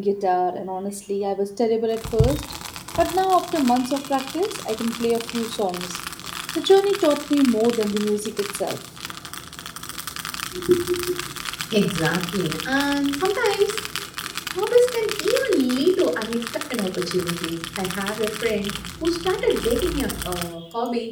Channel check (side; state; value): both; identical; correlation 1.00